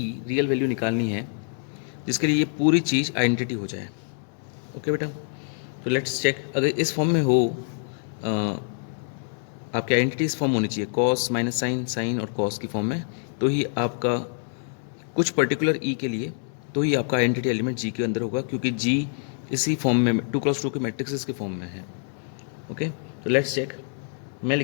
रियल वैल्यू निकालनी है जिसके लिए ये पूरी चीज़ आइडेंटिटी हो जाए। ओके बेटा, तो लेट्स चेक। अगर इस फॉर्म में हो आपकी आइडेंटिटी इस फॉर्म होनी चाहिए, कॉस माइनस साइन, साइन और कॉस की फॉर्म में, तो ही आपका कुछ पर्टिकुलर ई के लिए तो ही आपका आइडेंटिटी एलिमेंट जी के अंदर होगा, क्योंकि जी इसी फॉर्म में 2x2 के मैट्रिक्स के फॉर्म में है। ओके, तो लेट्स चेक। मैं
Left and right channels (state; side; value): silent; right; 61 dB below the other